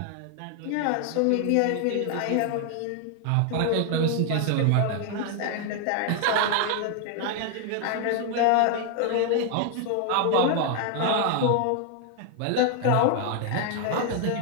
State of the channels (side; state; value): both; different; correlation 0.00